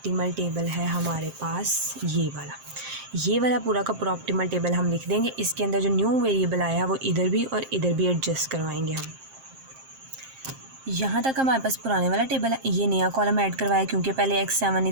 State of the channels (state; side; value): late; left; 7.5 ms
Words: टेबल है हमारे पास ये वाला पूरा का पूरा ऑप्टिमल टेबल हम लिख देंगे। इसके अंदर जो न्यू वेरिएबल आया है वो इधर भी और इधर भी एडजस्ट करवाएंगे हम। यहाँ तक हमारे पास पुराने वाला टेबल है, ये नया कॉलम ऐड करवाया क्योंकि पहले x7 नहीं